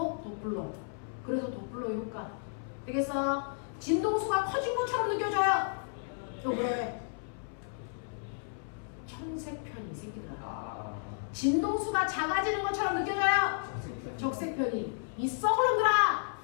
도플러. 그래서 도플러 효과. 되겠어? 진동수가 커진 것처럼 느껴져요. 또 왜? 청색편이 생기더라. 진동수가 작아지는 것처럼 느껴져요. 적색편이. 이 썩을 놈들아.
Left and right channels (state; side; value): silent; right; 56 dB below the other